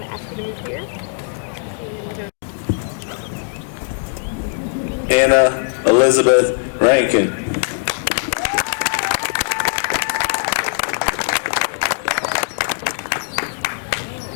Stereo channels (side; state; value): right; silent; digital silence